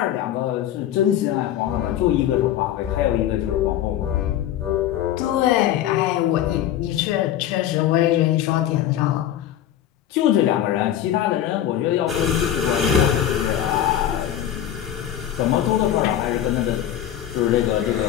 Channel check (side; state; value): right; quieter; 11.2 dB